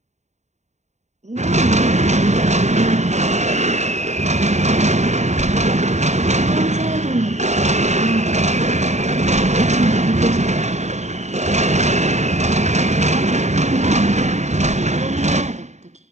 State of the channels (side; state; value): left; late; 0.34 ms